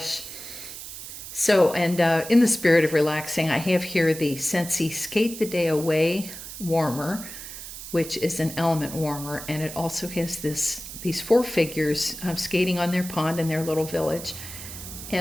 So, and in the spirit of relaxing, I have here the Scentsy Skate the Day Away warmer, which is an element warmer. And it also has these four figures skating on their pond in their little village.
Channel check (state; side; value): noise; right; hiss, 11 dB below the sound